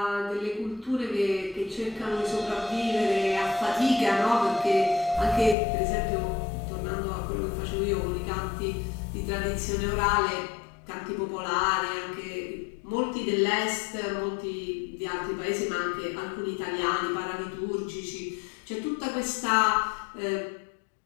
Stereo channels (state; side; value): drops out; right; at 5.6 s